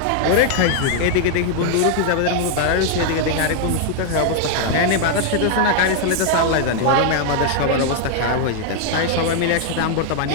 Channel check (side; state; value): both; different; correlation 0.00